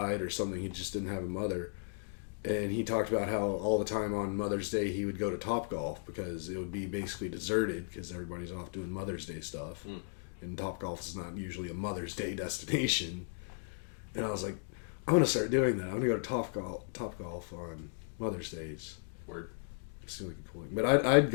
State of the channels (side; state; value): right; silent; digital silence